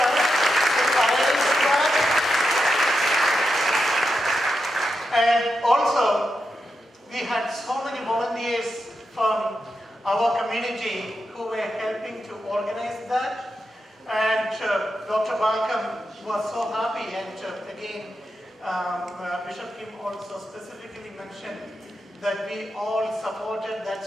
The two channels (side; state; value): both; normal; correlation 0.87